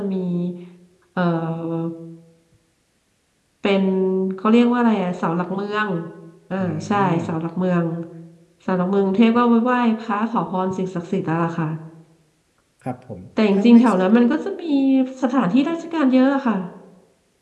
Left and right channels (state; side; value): identical; both; correlation 1.00